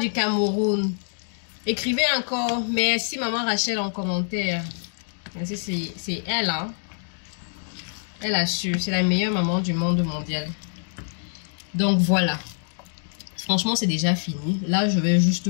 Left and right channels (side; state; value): right; silent; 62 dB below the other